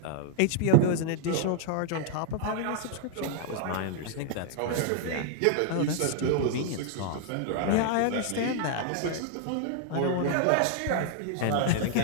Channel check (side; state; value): both; different; correlation 0.00